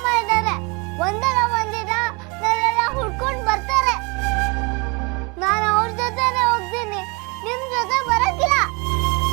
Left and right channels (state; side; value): quieter; left; 29.0 dB